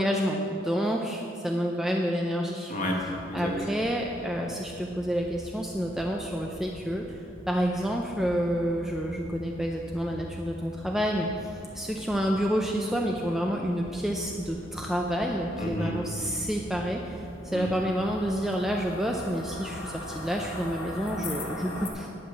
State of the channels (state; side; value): normal; both; correlation 0.78